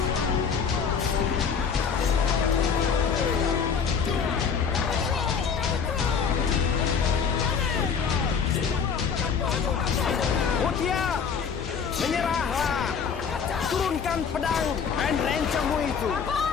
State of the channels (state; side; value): quieter; right; 6.4 dB